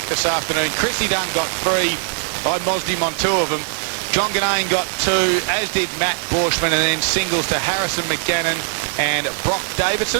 this afternoon. Chrissy Dunn got 3. I mozzed him on 2 of them. John Ganane got 2, as did Matt Borshman, and then singles to Harrison McGannon and Brock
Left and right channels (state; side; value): silent; left; 66 dB below the other